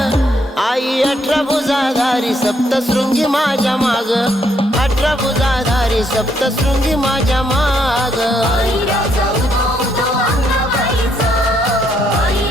आई 18 भुजाधारी सप्तशृंगी माझ्या माग 18 भुजाधारी सप्तशृंगी माझ्या माग आई राजा उदो उदो अंगबाईचा आई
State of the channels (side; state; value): both; normal; correlation 0.73